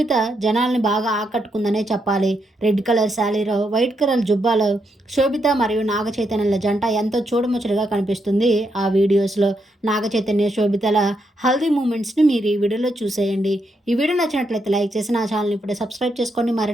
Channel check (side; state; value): both; normal; correlation 0.80